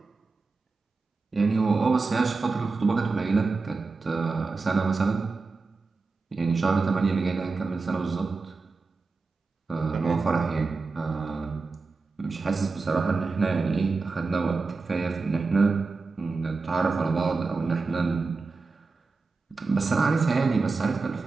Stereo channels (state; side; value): quieter; left; 4.1 dB